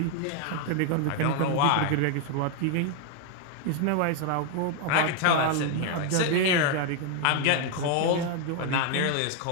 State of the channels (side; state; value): both; different; correlation 0.00